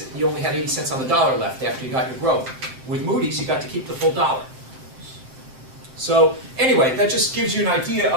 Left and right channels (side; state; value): left; late; 7.6 ms